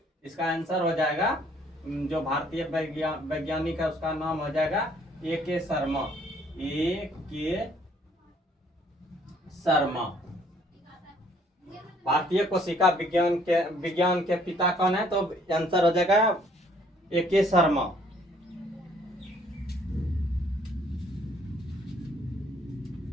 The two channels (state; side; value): normal; both; correlation 0.63